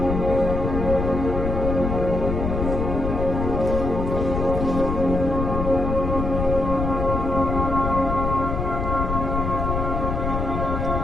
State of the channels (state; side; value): noise; left; rumble, 2 dB below the sound